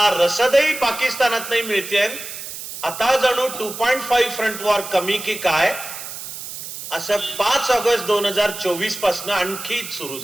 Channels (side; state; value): right; noise; hiss, 10 dB below the sound